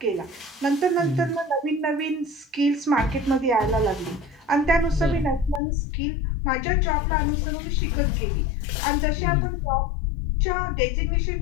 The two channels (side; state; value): right; drops out; at 5.6 s